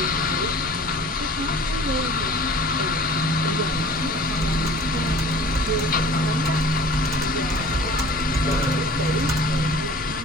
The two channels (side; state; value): both; normal; correlation 0.45